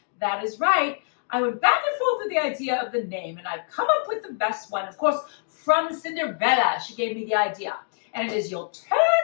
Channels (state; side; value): silent; right; digital silence